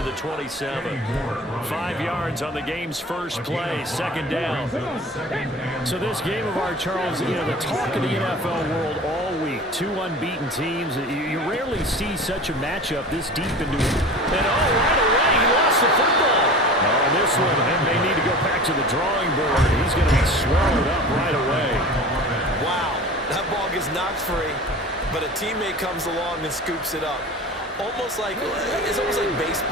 the 27. 5 yards on the game's first play, second down. So this game of ours, Charles, you know, the talk of the NFL world all week. 2 unbeaten teams. You rarely see such a matchup this deep into it. And right away, he lost the football. Oh, this one, and they need to go back to the drawing board. He's going to be swallowed up right away. Wow, that ball gets knocked free. But a teammate comes along and scoops it up. It's almost like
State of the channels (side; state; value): both; normal; correlation 0.38